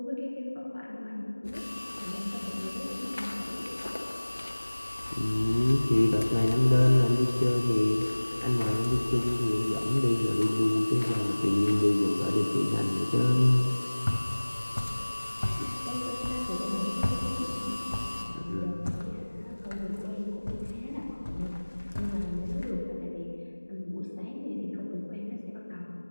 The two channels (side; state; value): both; inverted; correlation -1.00